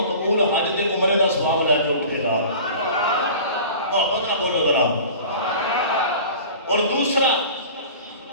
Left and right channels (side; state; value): both; inverted; correlation -0.40